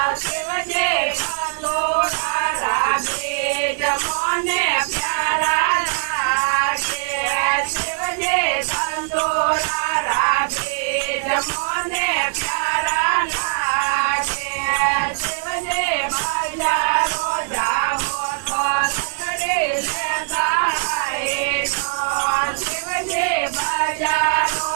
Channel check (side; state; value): left; silent; digital silence